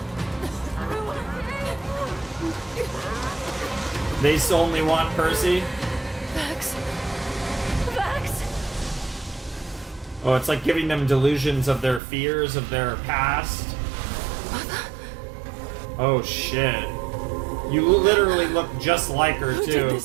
They only want Percy? Vax. Vax. Oh, it's like giving them delusions of their fears, of their past. Oh, shit. You literally look just like her, Who too. did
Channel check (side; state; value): left; drops out; at 12.0 s